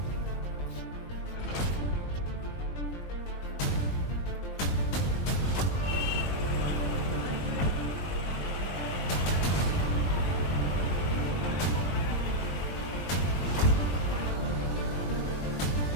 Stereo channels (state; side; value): late; right; 21 ms